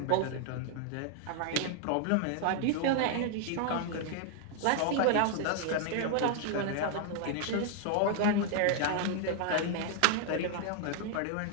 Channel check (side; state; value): both; different; correlation 0.00